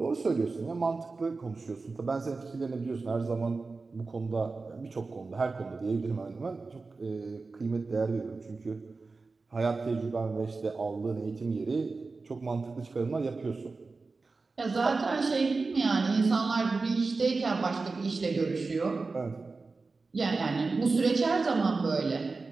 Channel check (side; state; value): left; quieter; 4.0 dB